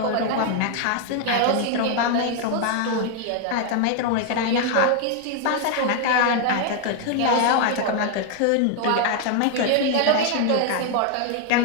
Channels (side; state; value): both; different; correlation 0.00